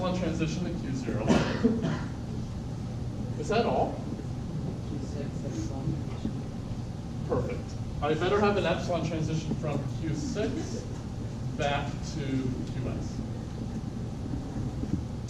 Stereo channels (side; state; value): both; identical; correlation 1.00